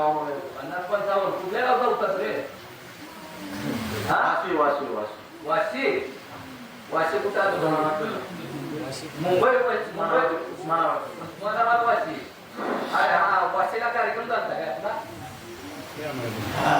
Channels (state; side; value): identical; both; correlation 1.00